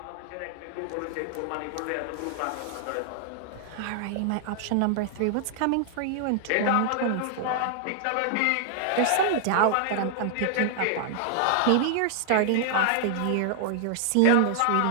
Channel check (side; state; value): both; different; correlation 0.00